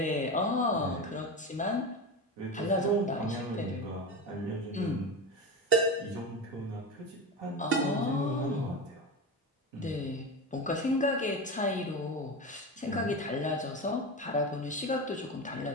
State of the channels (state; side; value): normal; both; correlation 0.22